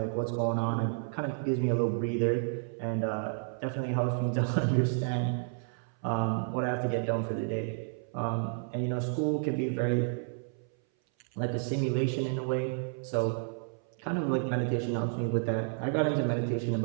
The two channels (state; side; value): silent; left; 57 dB below the other